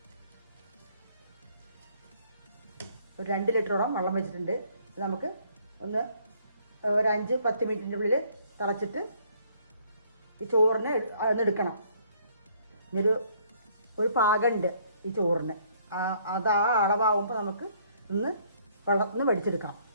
ഒരു 2 ലിറ്ററോളം വെള്ളം വെച്ചിട്ടുണ്ട്. ഇത് നമുക്ക് ഒരു 5-10 മിനിറ്റിൻ്റെ ഉള്ളിൽ തിളച്ചിട്ട് ഈ ചോറിന് എടുക്കണം. ഇനിയൊരു പാകമുണ്ട് ഈ ചോറിന്. അത് ആ അളവാകുമ്പോൾ നമുക്ക് വെള്ളത്തിൽ നിന്ന് വെടിച്ചെടുക്കാം.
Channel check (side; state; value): both; inverted; correlation -0.64